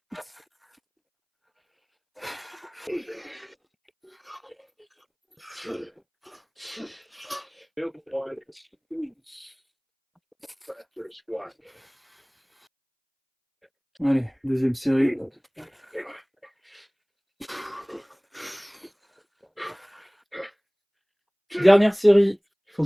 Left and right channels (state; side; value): identical; both; correlation 1.00